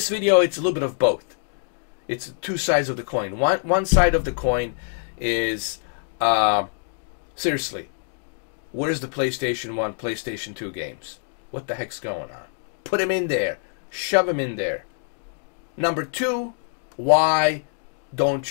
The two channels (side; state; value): right; silent; 62 dB below the other